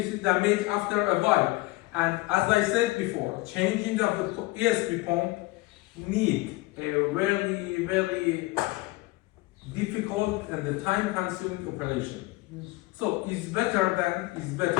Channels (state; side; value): quieter; right; 21.7 dB